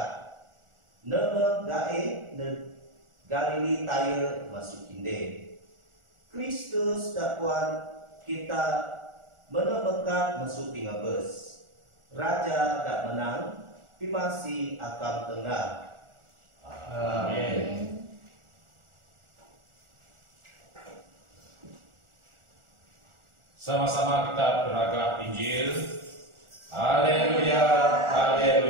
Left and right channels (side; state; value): left; late; 1.4 ms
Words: Nama gae ne Galili taya masuk kinde. Kristus dakwaan kita menemekat masuk pingabes. Raja dak menang, pimasi akam tengah. Amin. Sama-sama kita beragam Injil. Haleluya,